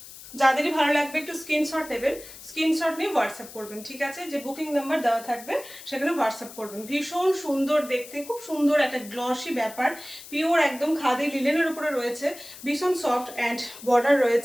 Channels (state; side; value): noise; left; hiss, 16 dB below the sound